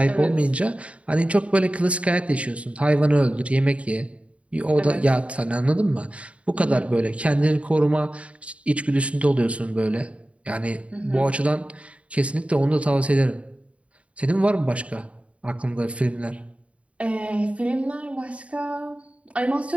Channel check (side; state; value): left; late; 0.063 ms